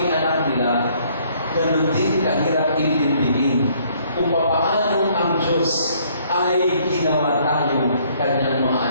anak nila, ganun din kahirap intindihin kung paano ang Diyos ay ginawa tayo kanyang mga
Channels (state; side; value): inverted; both; correlation -0.63